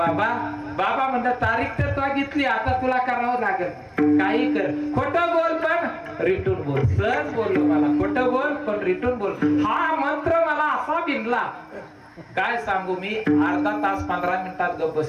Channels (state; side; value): identical; both; correlation 1.00